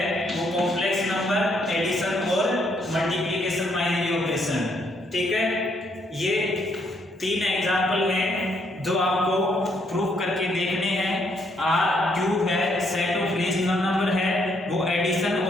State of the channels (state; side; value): normal; both; correlation 0.72